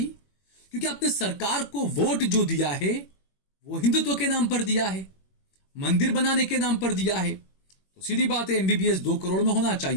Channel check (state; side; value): late; right; 21 ms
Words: क्योंकि आपने सरकार को वोट जो दिया है वो हिंदुत्व के नाम पर दिया है, मंदिर बनाने के नाम पर दिया है। तो सीधी बात है, एमबीबीएस 2 करोड़ में होना